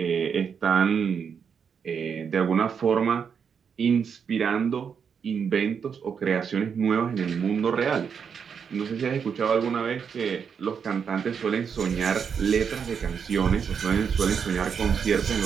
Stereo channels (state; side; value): quieter; left; 6.8 dB